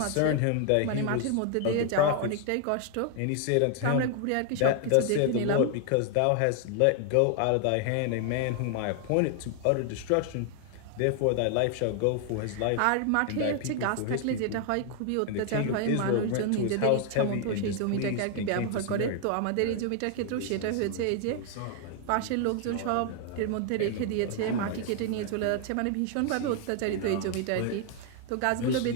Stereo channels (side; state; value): both; different; correlation 0.00